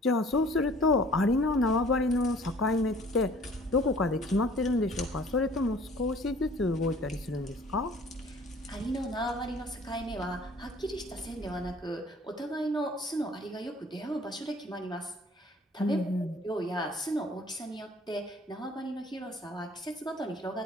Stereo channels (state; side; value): normal; both; correlation 0.52